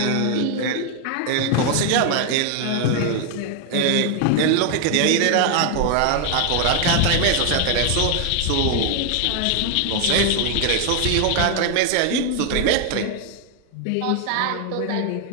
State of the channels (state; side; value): different; both; correlation 0.00